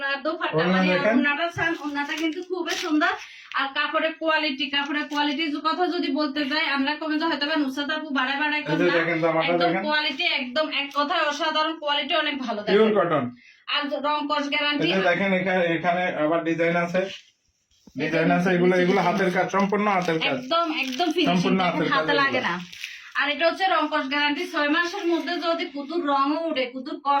দোপাট্টা মানে ওড়নাটা সান ওড়নাটা কিন্তু খুবই সুন্দর আর কাপড়ের কোয়ালিটির কথা যদি বলতে যাই আমরা কমে যে হয়তো নুসরাত আপু বাড়ায় একদম কোয়ালিটি একদম এক কথায় অসাধারণ কোয়ালিটি অনেক ভালো পিওর কটন আর রং কস গ্যারান্টি দেখেন এখানে আবার ডিজাইন আছে এগুলো হাতের কাজ সম্পূর্ণ হাতের কাজ একদম ফিনিশিং হাতে লাগে না আর এটা হচ্ছে রং কস গ্যারান্টি 6 মাসের মধ্যে যদি কুতুর রঙও উঠে কুতুর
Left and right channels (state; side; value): identical; both; correlation 1.00